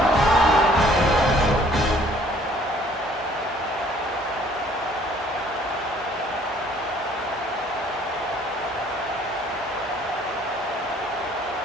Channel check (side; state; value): both; normal; correlation 0.58